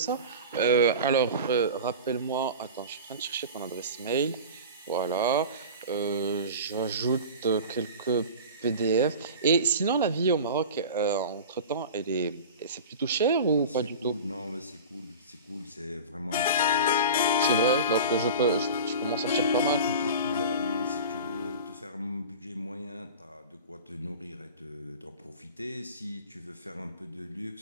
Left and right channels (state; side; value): inverted; both; correlation -0.33